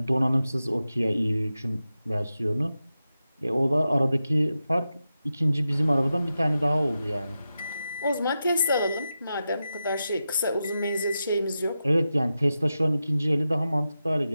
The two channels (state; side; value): inverted; both; correlation -0.90